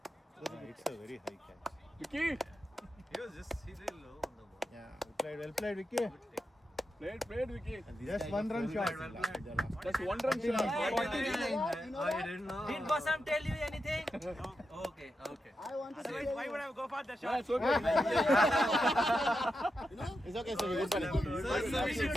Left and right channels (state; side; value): normal; both; correlation 0.87